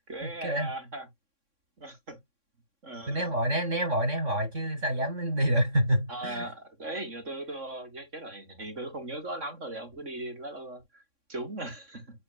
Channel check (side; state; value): left; late; 3.6 ms